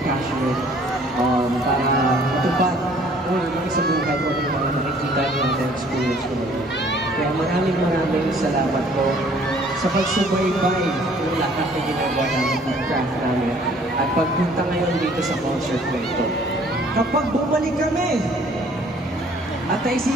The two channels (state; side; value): normal; both; correlation 0.57